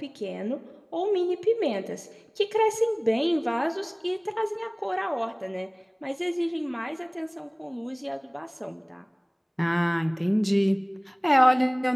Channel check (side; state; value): both; identical; correlation 1.00